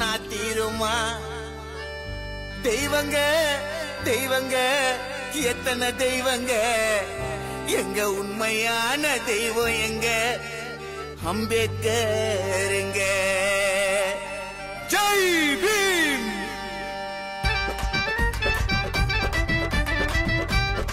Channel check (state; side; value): identical; both; correlation 1.00